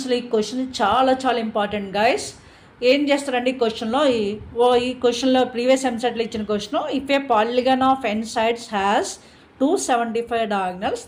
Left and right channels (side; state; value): both; identical; correlation 1.00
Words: ఈ క్వశ్చన్ చాలా చాలా ఇంపార్టెంట్ గైస్. ఏం చేస్తారండి ఈ క్వశ్చన్లో, ఈ క్వశ్చన్లో ప్రీవియస్ ఎంసెట్లో ఇచ్చిన question, if a polygon of n sides has 275 diagonals